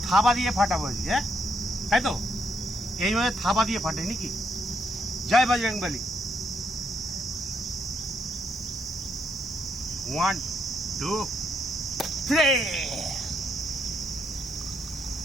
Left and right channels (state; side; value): normal; both; correlation 0.76